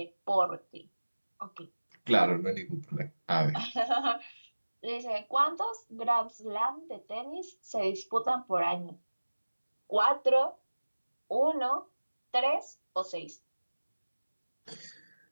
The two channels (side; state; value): both; inverted; correlation -1.00